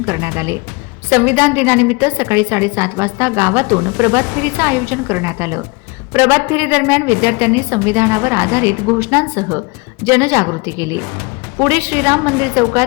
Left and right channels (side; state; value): right; quieter; 27.5 dB